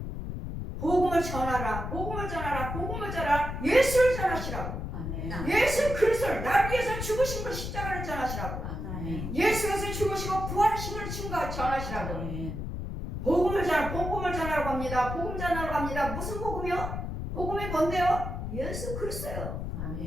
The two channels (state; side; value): noise; left; rumble, 5 dB below the sound